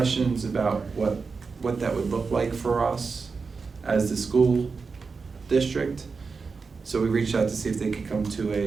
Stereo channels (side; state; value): left; quieter; 4.8 dB